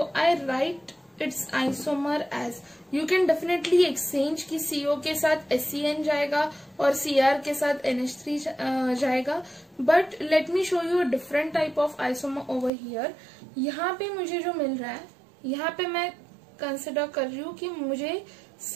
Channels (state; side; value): drops out; left; at 12.7 s